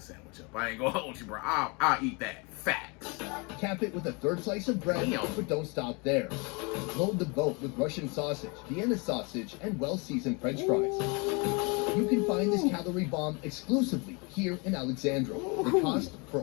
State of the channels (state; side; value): quieter; right; 30.5 dB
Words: sandwich up. I ain't gonna hold you, bro. I'll eat that. Facts. Cap it with a third slice of bread, but don't stop there. Load the boat with Russian sausage, Vienna sausage, and well-seasoned French fries. You can find this calorie bomb exclusively here in Alexandra. The cost for